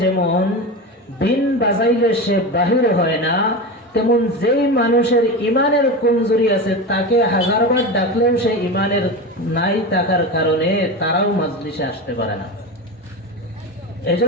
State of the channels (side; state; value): both; normal; correlation 0.23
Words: যেমন বিন বাজাইলে সে বাহির হয় না, তেমন যেই মানুষের ইমানের কমজোরি আছে তাকে হাজারবার ডাকলেও সে ইমানের নাই থাকার কারণে তারাও মাজলিসে আসতে পারে না।